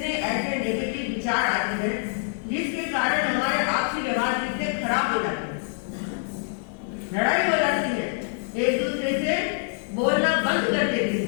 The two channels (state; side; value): silent; right; digital silence